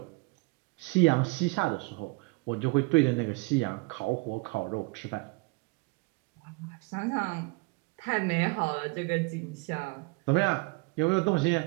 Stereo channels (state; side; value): quieter; left; 27.6 dB